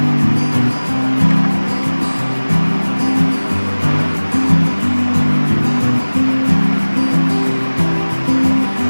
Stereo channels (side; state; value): both; inverted; correlation -1.00